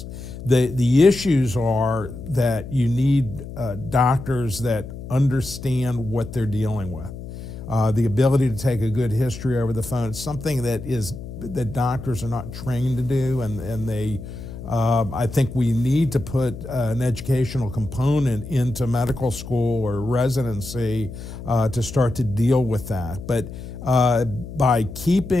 The issues are that you need doctors that understand what they're dealing with. The ability to take a good history over the phone is something that doctors are not trained to do, and they. I think we need to put an educational component into medical school or residency to start to deal with that. But by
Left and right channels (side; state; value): left; noise; hum, 11 dB below the sound